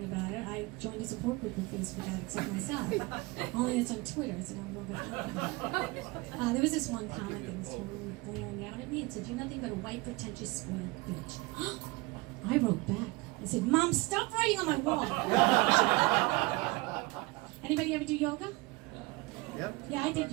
about it. I joined a support group of Facebook addicts like myself. Only it's on Twitter, so now I'm going back. There was this one comment that was totally blaring out at me. It said, you're nothing but a white, pretentious, spoiled bitch. I wrote back. I said, Mom, stop writing on my wall. Anybody ever do yoga? Yep. Yeah, I did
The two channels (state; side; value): quieter; left; 23.5 dB